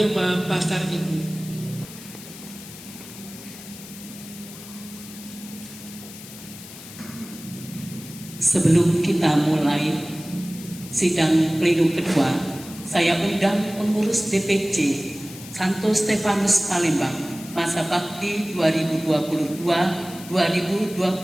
Pasar Ibu. Sebelum kita mulai sidang pleno kedua, saya undang pengurus DPC Santo Stefanus Palembang masa bakti 2022-2025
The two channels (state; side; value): noise; left; hiss, 15 dB below the sound